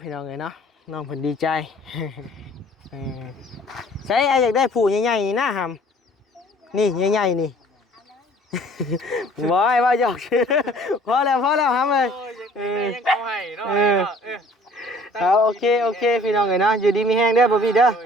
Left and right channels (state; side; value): normal; both; correlation 0.53